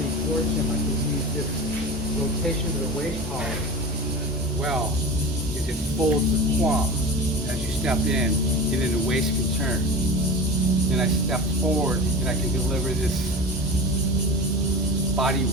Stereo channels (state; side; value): normal; both; correlation 0.31